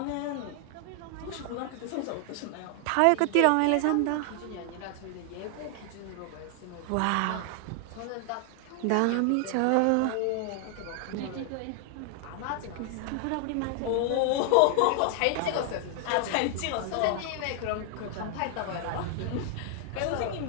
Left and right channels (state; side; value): different; both; correlation 0.00